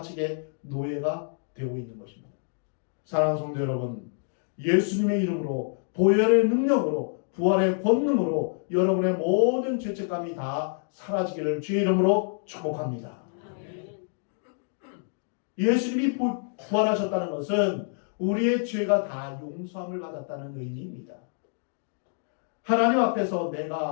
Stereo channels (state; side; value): silent; right; 60 dB below the other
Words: 노예가 되고 있는 것입니다. 사랑하는 성도 여러분, 예수님의 이름으로, 보혈의 능력으로, 부활의 권능으로 여러분의 모든 죄책감이 다 사라지기를 주의 이름으로 축복합니다. 예수님이 부활하셨다는 것은 우리의 죄가 다 용서함을 받았다는 의미입니다. 하나님 앞에서